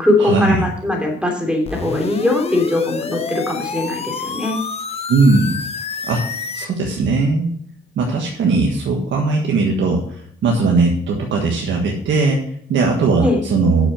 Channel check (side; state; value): both; normal; correlation 0.58